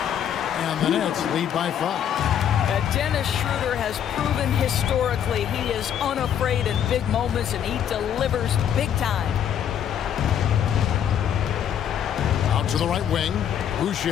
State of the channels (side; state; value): right; quieter; 9.3 dB